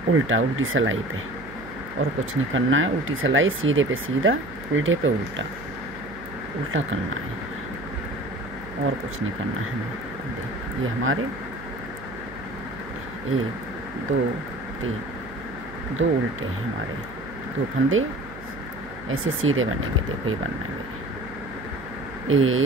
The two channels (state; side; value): noise; right; hum, 16 dB below the sound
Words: उल्टा, उल्टी सिलाई पे, और कुछ नहीं करना है। उल्टी सिलाई, सीधे पे सीधा, उल्टे पे उल्टा, उल्टा करना है और कुछ नहीं करना है हमें। ये हमारे 1 2 3, 2 उल्टे हैं हमारे, 2 फंदे ऐसे सीधे बनेंगे, देखो ये बनना है मेरे